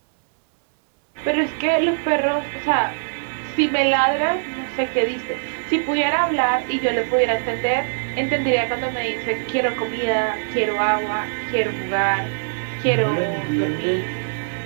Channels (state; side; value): silent; left; 64 dB below the other